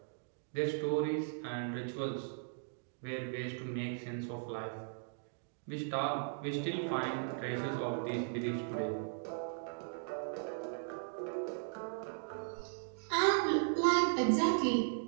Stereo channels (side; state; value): left; silent; digital silence